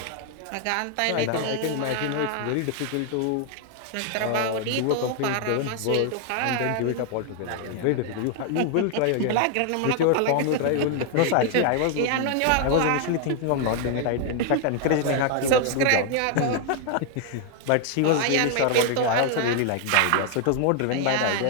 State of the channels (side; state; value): both; different; correlation 0.00